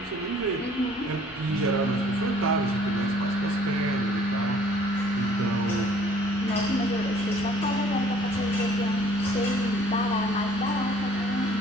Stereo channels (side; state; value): both; normal; correlation 0.57